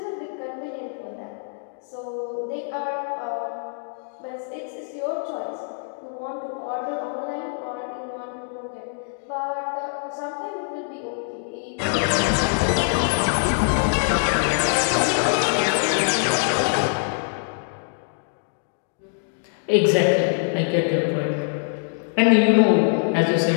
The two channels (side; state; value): right; silent; digital silence